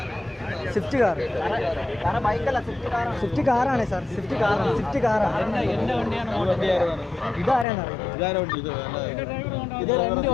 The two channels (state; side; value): drops out; right; at 7.7 s